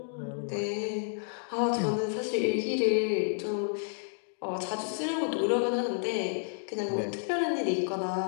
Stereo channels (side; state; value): right; silent; digital silence